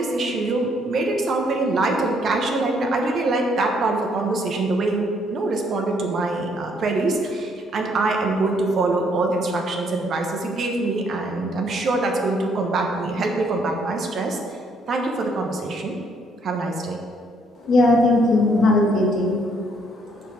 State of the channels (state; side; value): normal; both; correlation 0.68